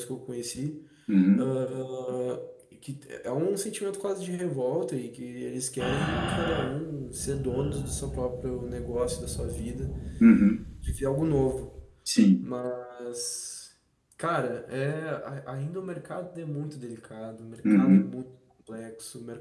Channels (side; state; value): both; identical; correlation 1.00